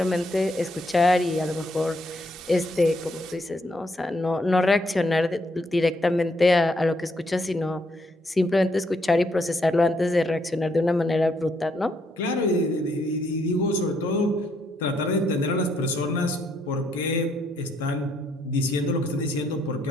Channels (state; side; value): normal; both; correlation 0.73